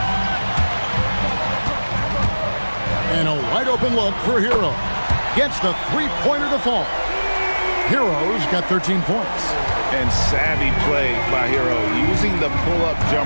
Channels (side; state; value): both; inverted; correlation -1.00